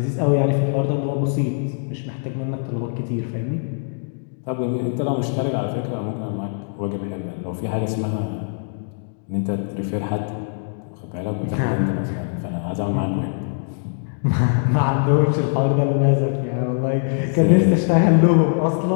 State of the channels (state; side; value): silent; right; digital silence